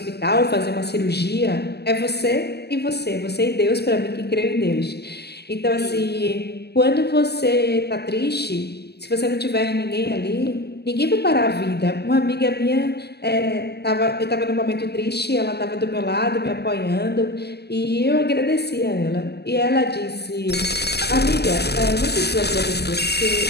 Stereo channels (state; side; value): late; right; 0.48 ms